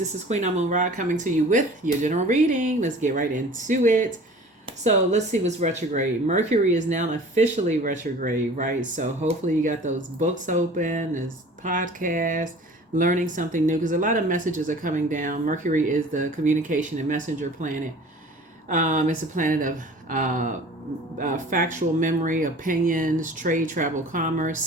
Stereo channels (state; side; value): normal; both; correlation 0.45